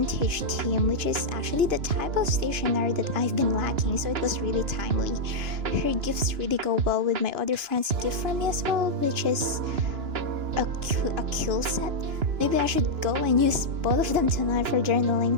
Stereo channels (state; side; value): late; left; 2.9 ms